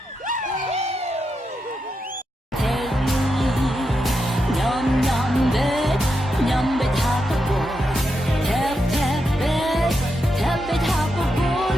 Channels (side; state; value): both; normal; correlation 0.85